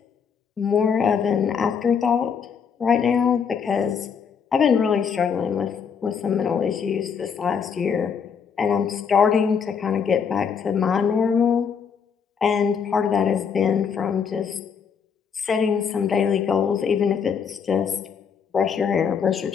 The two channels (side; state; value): right; quieter; 6.7 dB